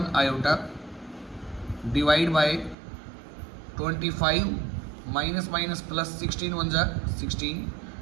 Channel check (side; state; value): left; drops out; at 2.8 s